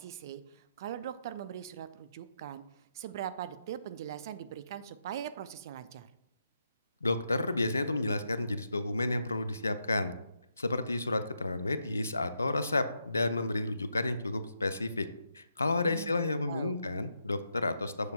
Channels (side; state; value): both; inverted; correlation -0.81